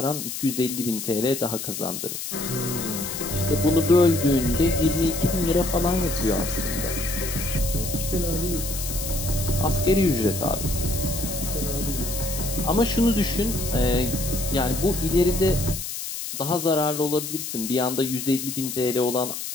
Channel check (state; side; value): noise; left; hiss, 6 dB below the sound